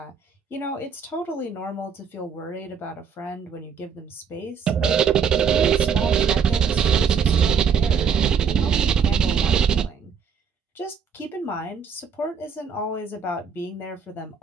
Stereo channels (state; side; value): quieter; left; 6.7 dB